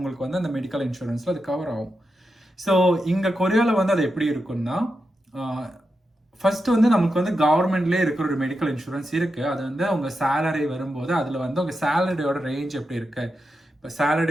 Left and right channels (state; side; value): normal; both; correlation 0.88